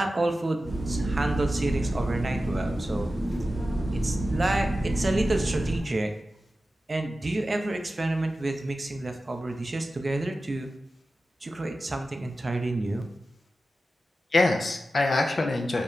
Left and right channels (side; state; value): both; normal; correlation 0.93